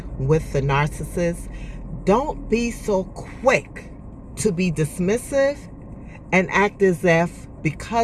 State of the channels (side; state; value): both; identical; correlation 1.00